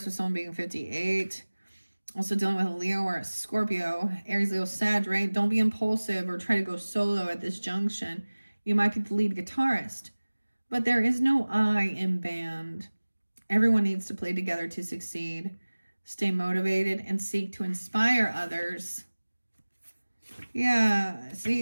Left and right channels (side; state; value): both; inverted; correlation -1.00